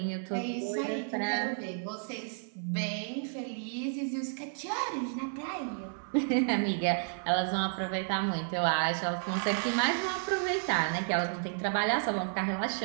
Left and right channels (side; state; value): left; silent; 57 dB below the other